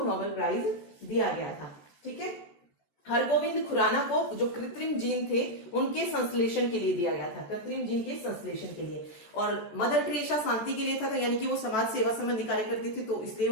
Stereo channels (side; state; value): right; late; 14 ms